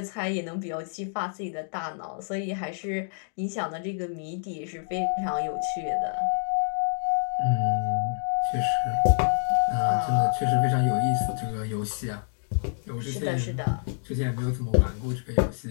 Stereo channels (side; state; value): right; silent; digital silence